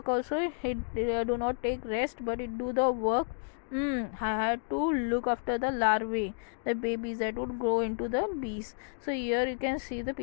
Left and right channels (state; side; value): silent; right; digital silence